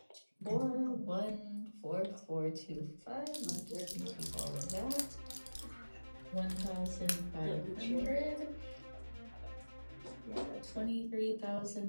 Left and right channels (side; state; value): both; inverted; correlation -1.00